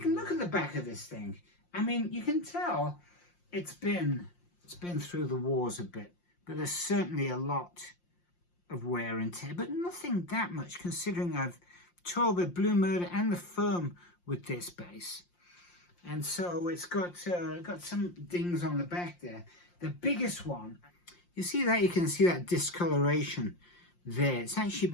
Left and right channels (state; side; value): late; right; 5.7 ms